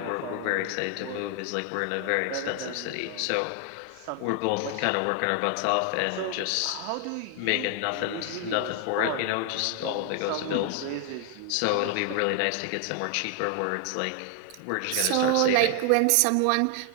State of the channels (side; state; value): both; different; correlation 0.00